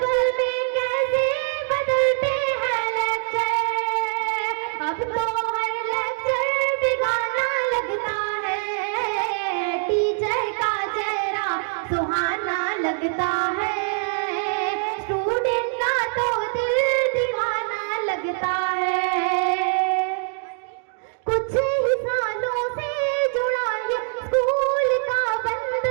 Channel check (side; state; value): left; silent; 60 dB below the other